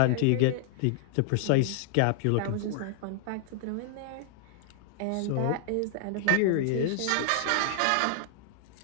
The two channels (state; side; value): different; both; correlation -0.01